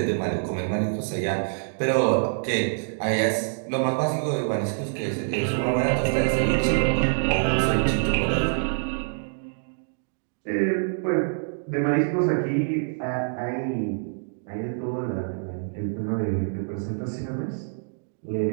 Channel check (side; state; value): left; silent; digital silence